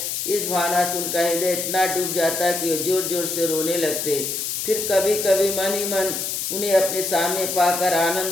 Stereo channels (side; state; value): left; noise; hiss, 3 dB below the sound